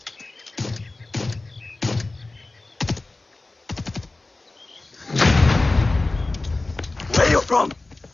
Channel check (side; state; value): right; quieter; 3.2 dB